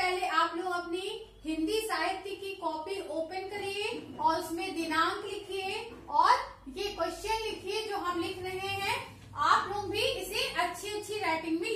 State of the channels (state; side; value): identical; both; correlation 1.00